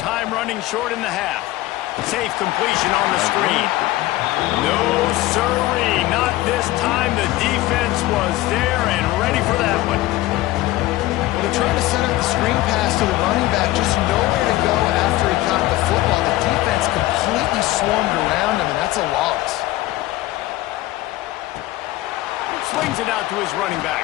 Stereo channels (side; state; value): right; quieter; 17.2 dB